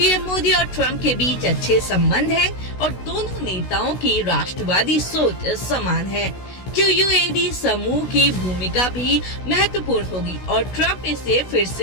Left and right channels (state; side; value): late; right; 16 ms